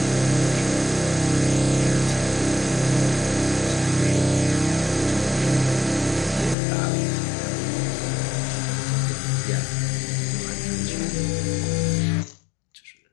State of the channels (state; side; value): drops out; right; at 6.6 s